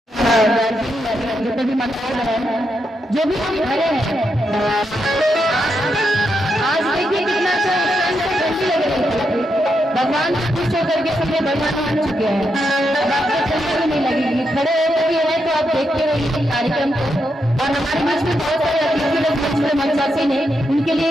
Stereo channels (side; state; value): both; normal; correlation 0.83